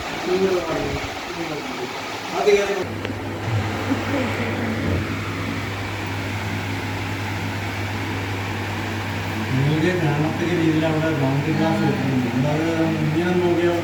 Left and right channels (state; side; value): identical; both; correlation 1.00